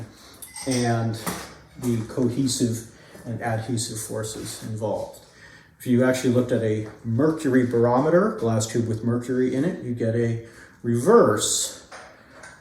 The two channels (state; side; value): identical; both; correlation 1.00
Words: and the cohesive and adhesive forces involved. If you actually looked at a mercury barometer, glass tube with mercury in it, you get a inverse,